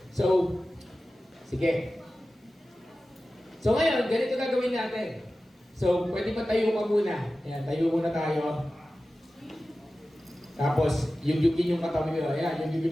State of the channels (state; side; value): normal; both; correlation 0.95